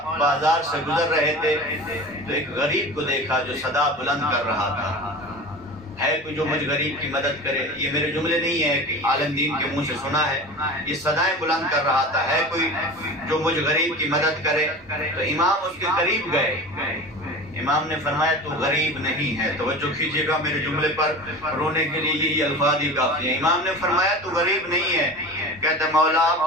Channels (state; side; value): normal; both; correlation 0.33